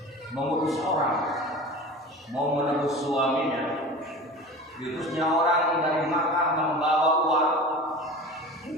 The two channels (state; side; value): normal; both; correlation 0.35